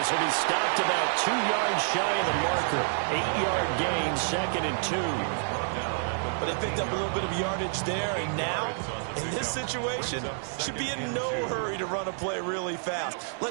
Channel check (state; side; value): silent; left; digital silence